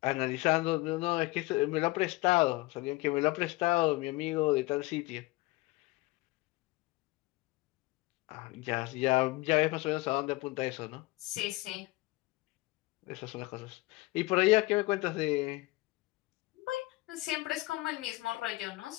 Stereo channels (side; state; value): right; quieter; 21.2 dB